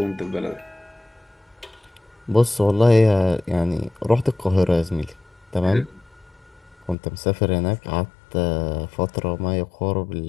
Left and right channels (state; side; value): drops out; right; at 7.0 s